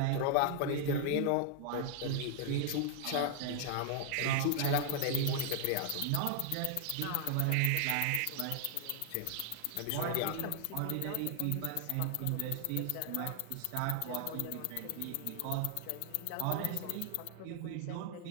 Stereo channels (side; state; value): both; different; correlation 0.00